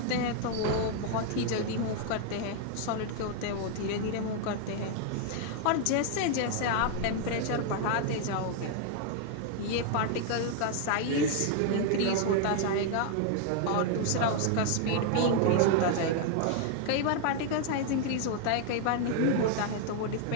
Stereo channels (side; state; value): both; different; correlation 0.00